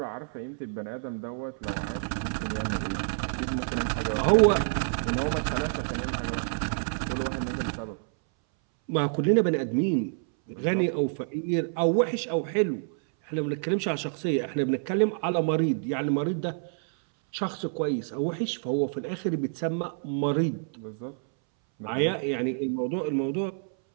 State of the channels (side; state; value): left; silent; 59 dB below the other